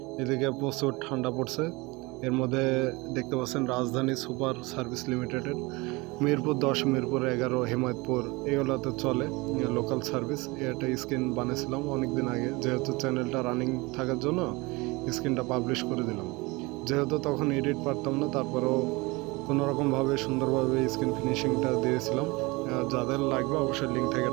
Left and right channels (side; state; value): left; quieter; 24.3 dB